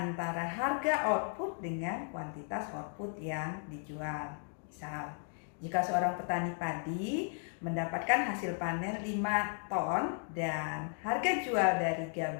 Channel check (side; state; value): right; silent; 54 dB below the other